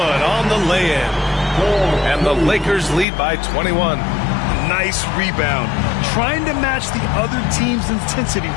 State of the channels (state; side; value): drops out; right; at 3.1 s